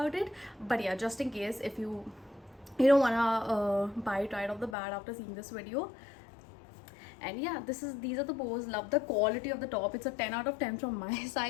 it. But yeah, just in case if you don't wanna buy it right off the bat after seeing this video. And yeah, these are the bows. Love the quality of the top. It's a 10 out of 10 from my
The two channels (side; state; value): right; drops out; at 4.8 s